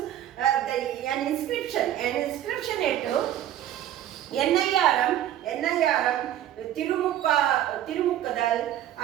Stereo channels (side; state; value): left; quieter; 12.0 dB